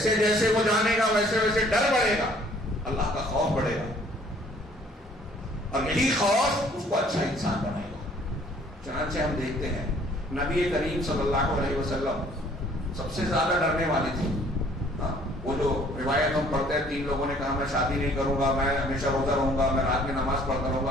جیسے وہ جانے گا ویسے ویسے ڈر بڑھے گا، اللہ کا خوف بڑھے گا، اور یہی خوف اس کو اچھا انسان بنائے گا. چنانچہ ہم دیکھتے ہیں نبی کریم صلی اللہ علیہ وسلم سب سے زیادہ ڈرنے والی تھی. وہ جو روایت ہم پڑھتے ہیں، 3 لوگوں نے کہا میں شادی نہیں کروں گا، میں ہمیشہ روزہ رہوں گا، میں رات میں نماز پڑھتا رہوں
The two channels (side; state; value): both; normal; correlation 0.58